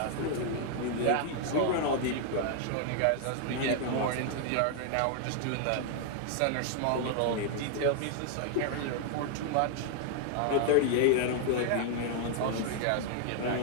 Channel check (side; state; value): both; different; correlation 0.00